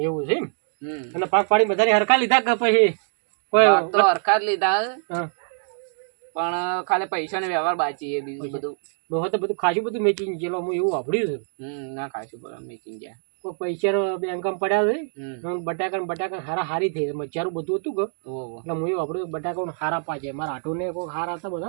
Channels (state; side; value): silent; left; digital silence